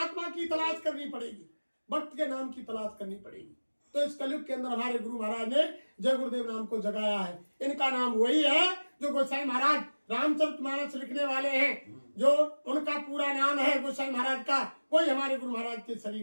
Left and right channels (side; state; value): both; inverted; correlation -1.00